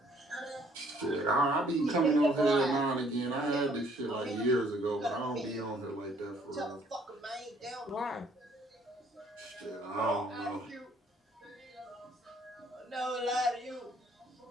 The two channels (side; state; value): both; normal; correlation 0.62